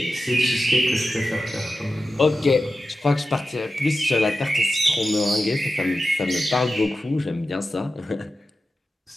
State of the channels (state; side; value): normal; both; correlation 0.92